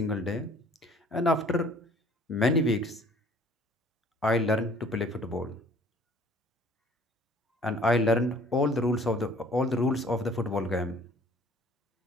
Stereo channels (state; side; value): normal; both; correlation 0.54